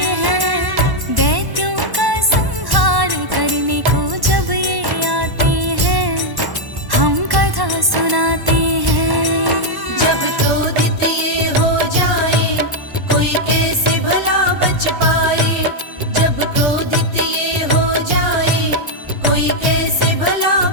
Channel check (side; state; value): left; late; 1.1 ms